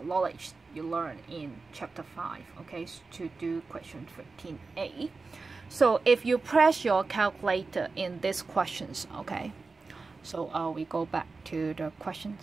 you learn in chapter 5, okay, to do question 13a. So if you press your calculator in these questions, okay, so we go back to the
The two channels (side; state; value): left; quieter; 4.1 dB